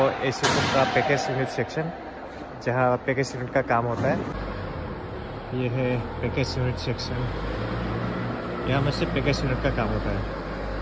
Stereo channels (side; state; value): both; identical; correlation 1.00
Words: एसीटून का पैकेज यूनिट सेक्शन, जहाँ पैकेज यूनिट का काम होता है। ये है पैकेज यूनिट सेक्शन, यहाँ में से पैकेज यूनिट का काम होता है